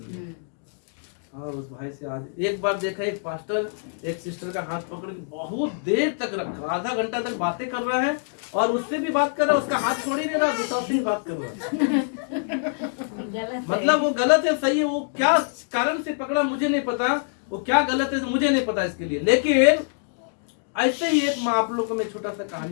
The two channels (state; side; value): silent; right; digital silence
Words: लिए। हाँ, उस भाई से आज एक बार देखा, एक पास्टर एक सिस्टर का हाथ पकड़ के बहुत देर तक रखा, आधा घंटा तक बातें कर रहा है, और उससे भी बात कर रहा है, उसका हाथ छोड़ ही नहीं रहा, दूसरा से ही बात कर रहा है। मतलब वो गलत है, सही है, वो क्या कारण से पकड़ा मुझे नहीं पता, वो क्या गलत है मुझे नहीं पता इसके लिए। लेकिन ऐसे ही एक, मैं आप लोगों को मैं छोटा सा